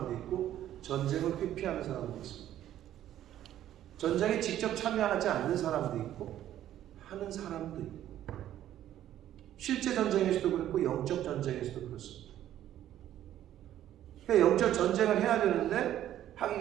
있고 전쟁을 회피하는 사람도 있습니다. 전쟁에 직접 참여하지 않는 사람도 있고 하는 사람도 있고, 실제 전쟁에서도 그렇고 영적 전쟁에서도 그렇습니다. 그러니까 영적 전쟁을 해야 되는데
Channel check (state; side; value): quieter; left; 12.1 dB